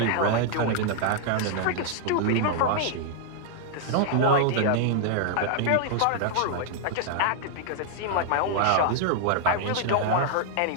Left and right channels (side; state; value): both; different; correlation 0.00